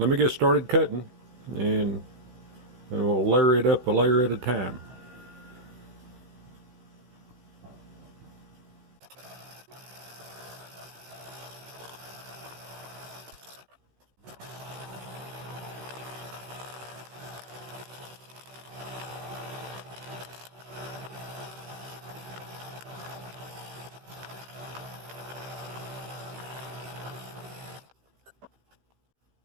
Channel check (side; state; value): left; late; 16 ms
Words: me get started cutting, and we'll layer it up a layer at a time.